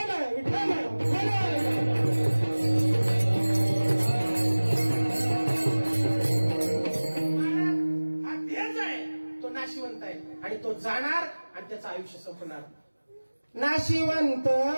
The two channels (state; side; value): inverted; both; correlation -1.00